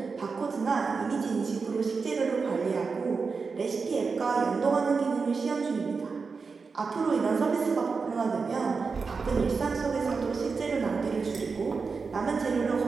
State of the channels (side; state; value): left; quieter; 4.8 dB